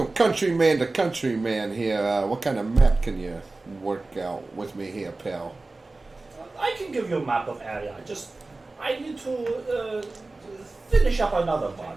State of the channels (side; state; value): left; quieter; 3.3 dB